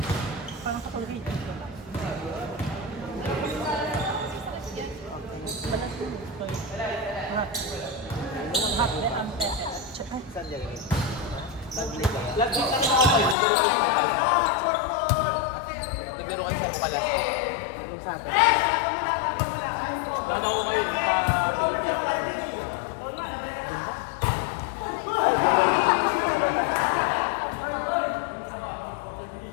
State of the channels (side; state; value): right; drops out; at 13.4 s